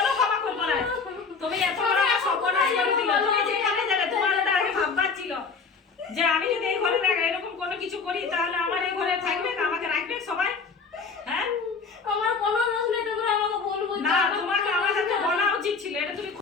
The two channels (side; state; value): right; quieter; 4.9 dB